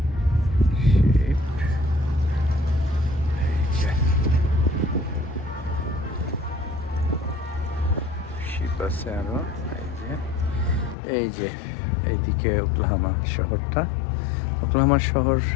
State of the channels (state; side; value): drops out; right; at 11.0 s